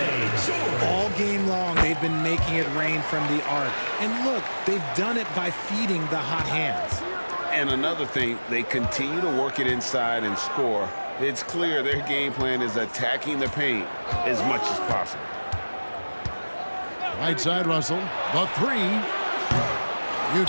All game long, they've been making it rain from the arc. And look, they've done it by feeding the hot hands. And another thing, they continue to work it inside and score. It's clear their game plan is attacking the paint as much as possible. Right side, Russell. The 3.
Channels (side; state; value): both; inverted; correlation -1.00